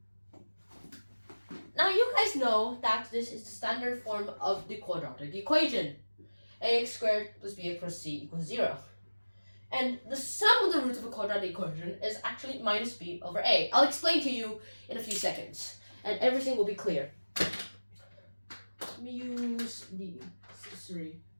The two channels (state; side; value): inverted; both; correlation -1.00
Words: you guys know that this is the standard form of the quadratic equation. Ax squared plus bx plus c equals 0. And the sum of the roots of a quadratic equation is actually minus b over a. I'll explain to you in a few seconds, and everything will be clear. Let me use the accessory